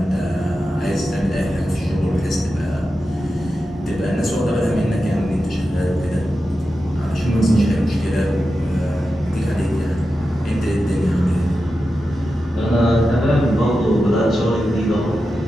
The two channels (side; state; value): both; normal; correlation 0.91